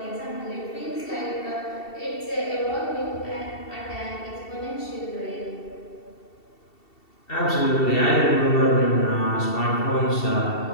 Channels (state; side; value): late; right; 2.7 ms